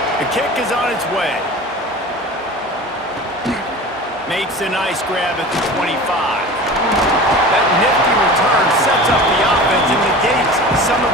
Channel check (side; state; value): both; normal; correlation 0.36